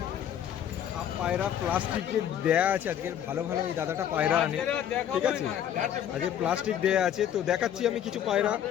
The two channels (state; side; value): quieter; right; 10.0 dB